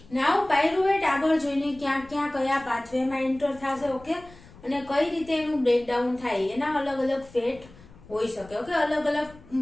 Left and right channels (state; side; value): noise; left; rumble, 22 dB below the sound